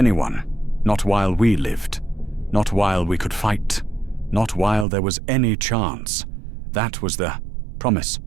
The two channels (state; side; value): drops out; left; at 4.9 s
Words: not while we lived, not while we could fight, not while there was any chance. That was the promise,